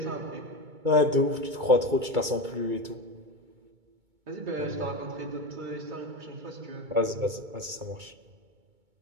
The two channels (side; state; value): left; late; 2.2 ms